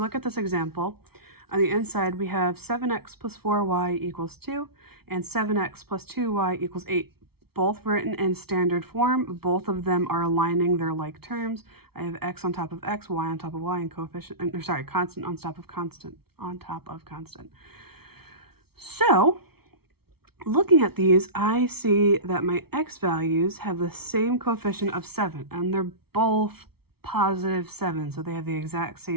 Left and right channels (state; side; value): late; left; 0.95 ms